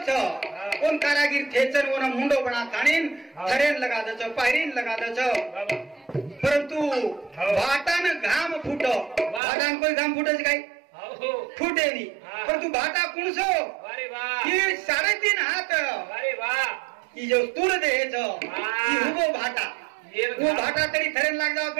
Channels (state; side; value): drops out; left; at 9.4 s